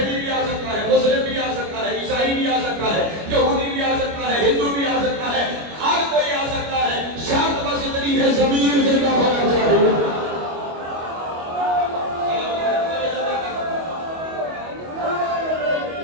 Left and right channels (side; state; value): left; late; 25 ms